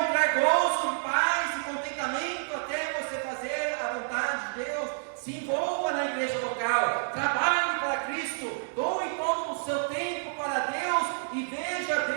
gozo, paz e contentamento até você fazer a vontade de Deus. Se envolva na igreja local, trabalhe para Cristo, doe todo o seu tempo para Deus e veja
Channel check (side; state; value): left; silent; digital silence